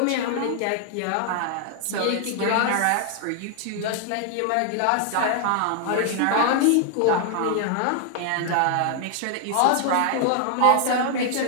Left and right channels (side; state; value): both; different; correlation 0.00